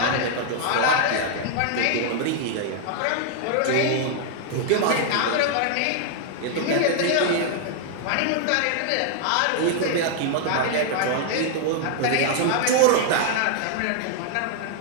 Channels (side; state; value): both; different; correlation 0.00